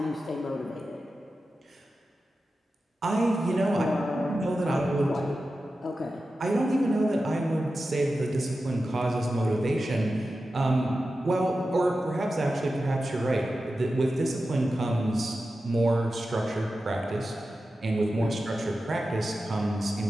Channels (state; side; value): normal; both; correlation 0.92